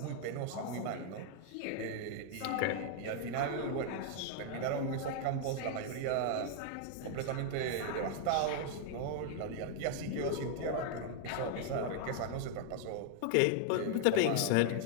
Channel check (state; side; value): different; both; correlation 0.00